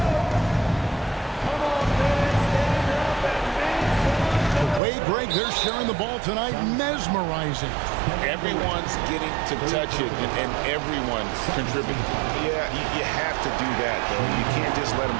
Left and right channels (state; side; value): drops out; left; at 4.8 s